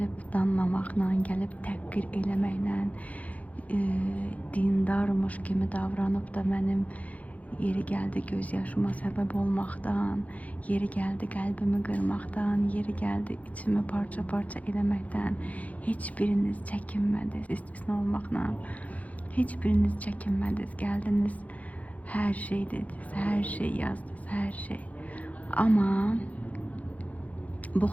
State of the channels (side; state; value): right; late; 0.070 ms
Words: danlamaqla, gəlib təhqir eləməklə, dindarmış kimi davranıb da mənim yeri gəldi göz yaşıma səbəb olmaqdan, yeri gəldi qəlbimi qırmaqdan, yeri gəldi içimi parça-parça eləməkdən heç biriniz çəkinmədiniz, istisna olmaqla. Heç biriniz çəkinmədiniz, gəldiniz, hər şey dediniz, hər şey yazdınız, hər şey. Amma Bu